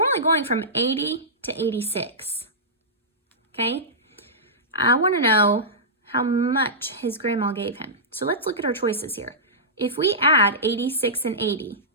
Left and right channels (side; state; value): both; normal; correlation -0.16